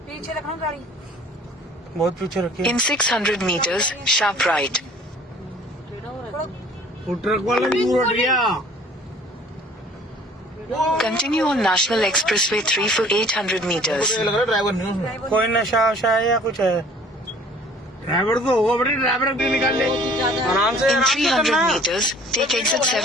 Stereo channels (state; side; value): normal; both; correlation 0.52